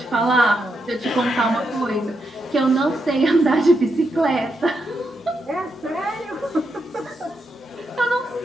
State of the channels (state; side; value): normal; both; correlation 0.83